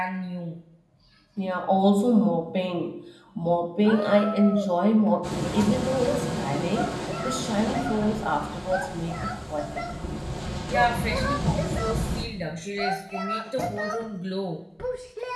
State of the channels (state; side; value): identical; both; correlation 1.00